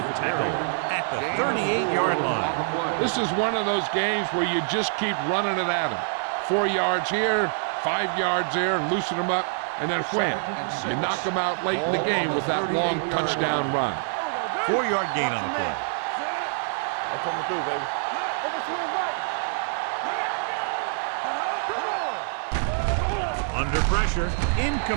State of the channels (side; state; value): left; silent; 61 dB below the other